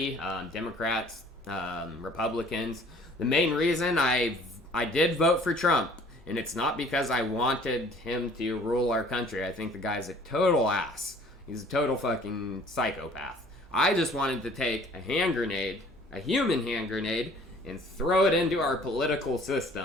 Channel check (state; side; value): normal; both; correlation 0.53